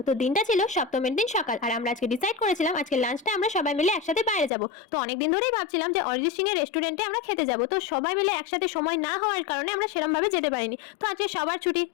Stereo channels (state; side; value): drops out; right; at 4.5 s